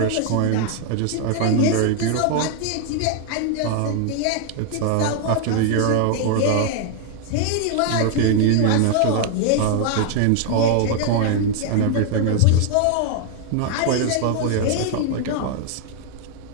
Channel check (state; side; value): different; both; correlation 0.01